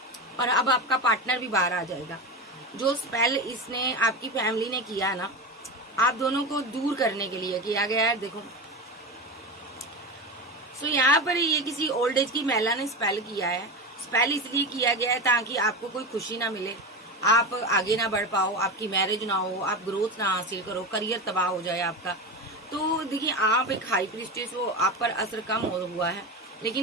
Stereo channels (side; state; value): both; normal; correlation 0.22